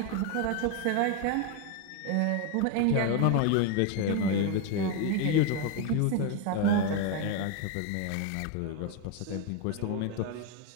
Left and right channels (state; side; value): different; both; correlation 0.01